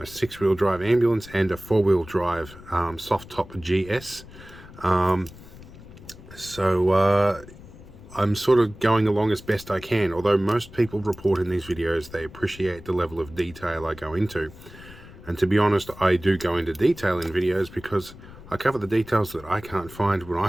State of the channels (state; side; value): noise; left; rumble, 18 dB below the sound